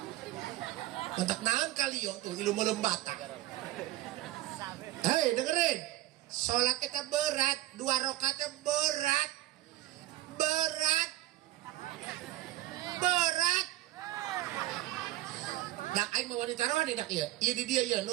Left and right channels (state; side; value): quieter; left; 16.4 dB